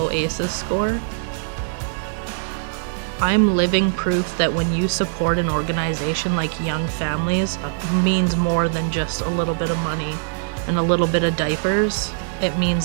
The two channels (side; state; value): left; silent; digital silence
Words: ACEs score. I'm living proof that when you support an organization like Young Families, it means more than just a little bit of money and a little bit of diapers. It